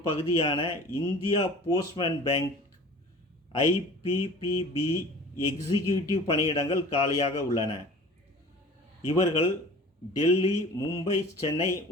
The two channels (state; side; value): normal; both; correlation 0.43